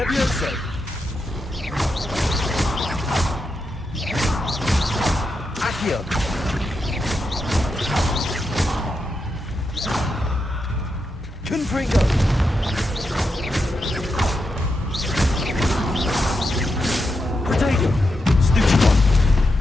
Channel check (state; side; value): normal; both; correlation 0.85